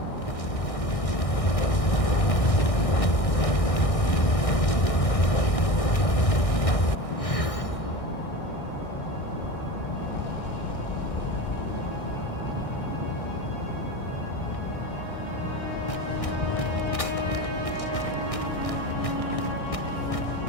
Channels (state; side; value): late; right; 1.6 ms